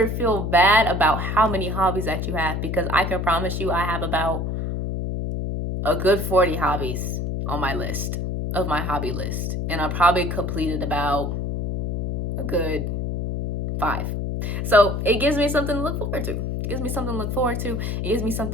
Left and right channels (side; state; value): left; noise; hum, 2 dB below the sound